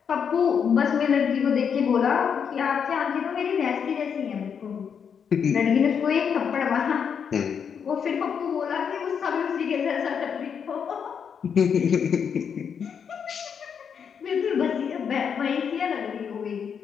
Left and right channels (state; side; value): quieter; right; 7.1 dB